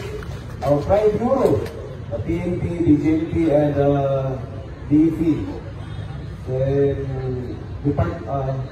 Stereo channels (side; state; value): both; identical; correlation 1.00